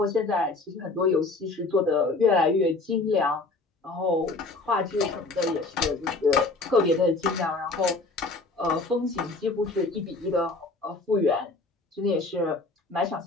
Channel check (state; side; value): quieter; right; 3.4 dB